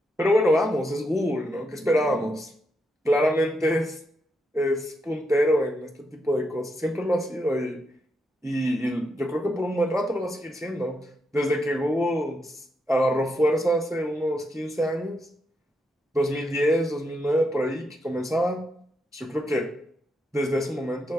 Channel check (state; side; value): normal; both; correlation 0.81